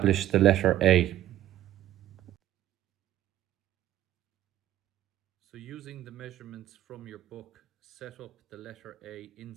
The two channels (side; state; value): left; quieter; 13.3 dB